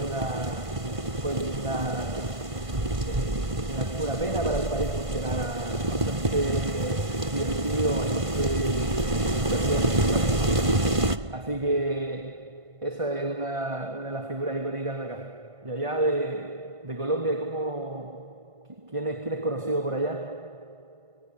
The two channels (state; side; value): late; left; 1.5 ms